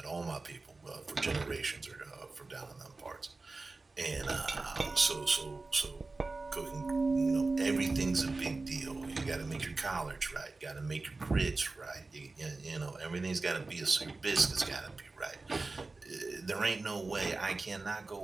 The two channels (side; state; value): left; quieter; 3.6 dB